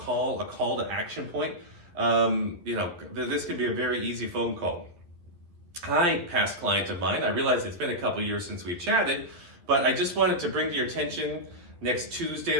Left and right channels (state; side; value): late; left; 11 ms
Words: to action point, this could be a very easy phone call. Hi, past client of mine. I realize it's been a couple years since we've chatted, but I just wanted to bring to your attention, next Tuesday